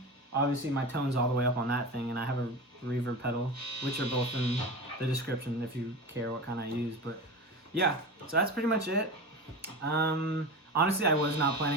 Obviously, my tone's all the way up on that thing, and I have a reverb pedal, which are both in the description if you care what kind I use. But yeah, so that's pretty much it. Honestly, I was not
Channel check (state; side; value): normal; both; correlation 0.27